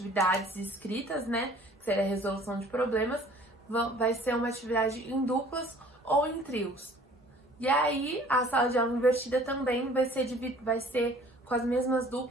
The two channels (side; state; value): both; normal; correlation 0.52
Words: escritas, que seria a resolução de problemas, vai ser uma atividade em duplas ou em trios. E aí, a sala de aula invertida também vai ser com as mesmas